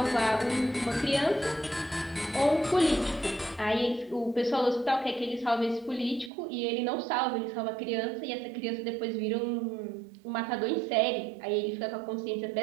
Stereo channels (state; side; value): drops out; left; at 6.3 s